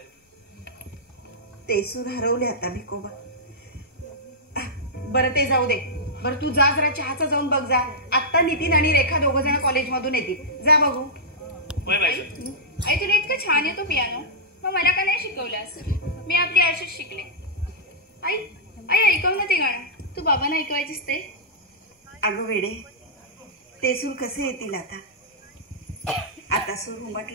ते सूर हरवले आता भिकोबा. बरं ते जाऊ दे. बरं तू जा जरा चहाचा जाऊन बघ जा. आत्ता नितीन आणि रेखा दोघ जण कॉलेजमधून येतील. जा बघू. होय बाईसाहेब. आई तुला इतकं छान येतो पियानो मग मला का नाही शिकवलास. मी आपली अशीच शिकले. आई आई ऐकव ना ते गाणं. तू बाबांना ऐकवायचीस ते. अगं वेडे ते सूर कसे येतील आता. आता सूर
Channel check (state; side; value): normal; both; correlation -0.12